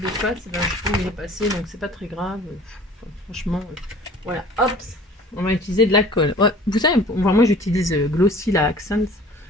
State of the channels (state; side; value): normal; both; correlation 0.48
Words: face, je trouve il est passé, donc c'est pas très grave. Enfin, franchement, voilà, hop, on va utiliser de la colle. Ouais, vous savez, moi j'utilise Glossy la Accents. Vous